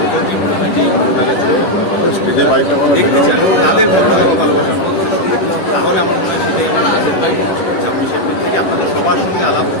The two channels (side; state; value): right; late; 10 ms